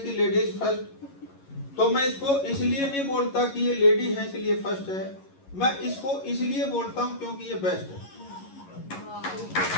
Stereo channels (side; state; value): right; late; 11 ms